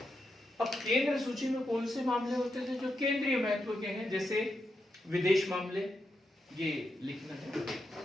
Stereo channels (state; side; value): normal; both; correlation 0.85